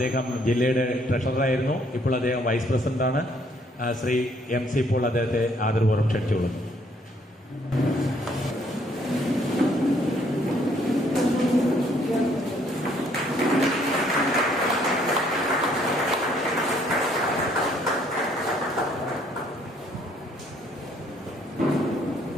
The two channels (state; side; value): normal; both; correlation 0.65